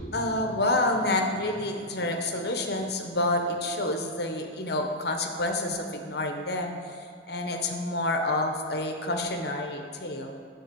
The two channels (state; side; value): normal; both; correlation -0.08